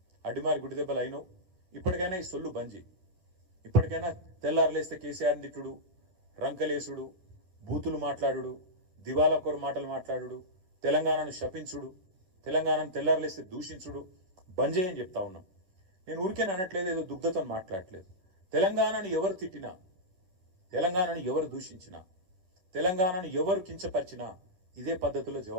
అడ్డిమారి గుడిదెబ్బలు అయినో ఇప్పటికైనా ఈ సొల్లు బంజి, ఇప్పటికైనా తెల్లారులేస్తే కేసీఆర్ తిట్టుడు, రంకలేసుడు, బూతులు మాట్లాడుడు, దివాలా కోరు మాటలు మాట్లాడుడు, తెలంగాణను శపించుడు, తెలంగాణను తెల్లారులేస్తే దూషించుడు బంజే అని చెప్తా ఉన్నాం. నేను ఊరికే అనట్లేదు, ఏదో దుగ్ధతో మాట్లాడట్లేదు. తెలంగాణను ఎవరు తిట్టినా, తెలంగాణను ఎవరు దూషించినా, తెలంగాణను ఎవరు కించపరిచినా ఇదే పద్ధతిలో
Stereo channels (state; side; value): late; left; 11 ms